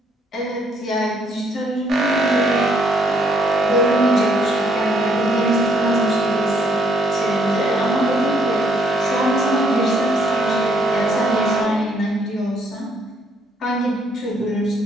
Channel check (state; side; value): normal; both; correlation 0.69